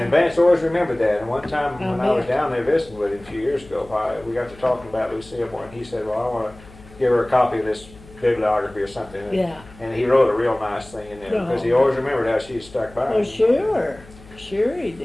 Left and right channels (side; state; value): left; noise; hum, 21 dB below the sound